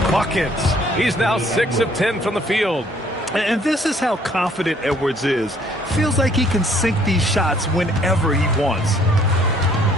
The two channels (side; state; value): both; normal; correlation 0.62